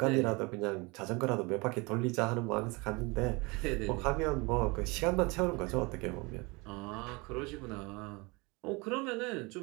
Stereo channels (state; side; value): quieter; left; 26.6 dB